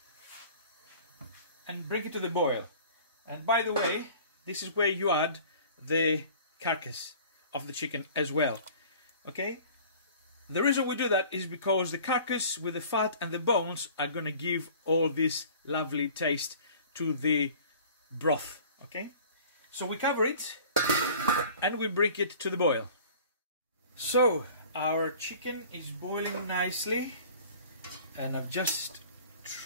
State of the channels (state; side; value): inverted; both; correlation -0.46